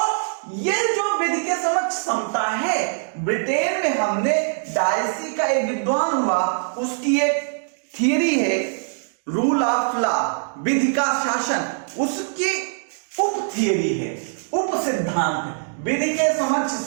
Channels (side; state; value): left; silent; digital silence